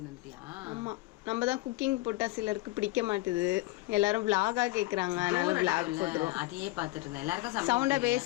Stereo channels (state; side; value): quieter; right; 19.8 dB